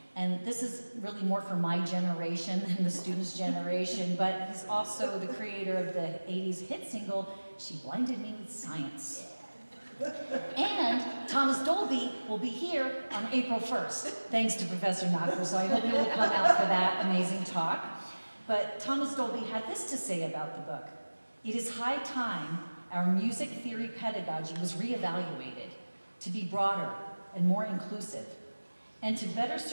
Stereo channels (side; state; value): both; inverted; correlation -1.00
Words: And this is really more for my generation than the students' generation, but he's also the creator of the 80s hit single, She Blinded Me with Science. And Thomas Dolby will be here on April 1st, thanks to Professor Nakra, so I hope you will come out for that amazing talk. But Thomas Dolby had this to say about the book: it is high time our music theory pedagogy was reevaluated to be broader and more inclusive, and to better